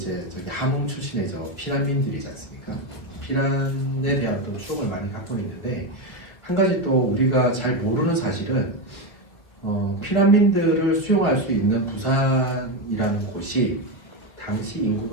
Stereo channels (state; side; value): late; right; 1.5 ms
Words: 저기 함흥 출신의 피난민들이지 않습니까? 피란에 대한 어떤 추억을 많이 갖고 있는데 한 가지 또 우리가 잘 모르는 사실은 피난민들을 수용할 수 있는 부산이라는 곳이 당시